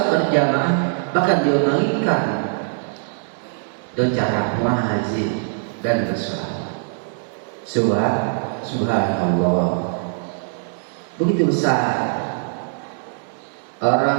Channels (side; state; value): left; silent; digital silence